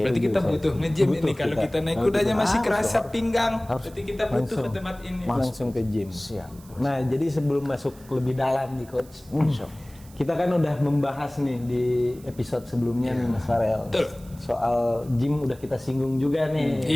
kita butuh nge-gym ini. Kalau kita naik kudanya masih kerasa pinggang, berarti kita butuh ke tempat ini. Langsung ke gym. Siap. Nah, jadi sebelum masuk lebih dalam nih Coach, kita kan udah membahas nih di episode sebelumnya nih Mas Farel. Betul. Soal gym udah kita singgung juga nih.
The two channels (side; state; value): right; noise; hiss, 24 dB below the sound